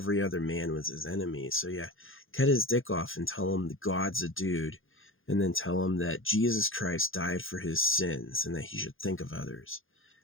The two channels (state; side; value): late; right; 0.59 ms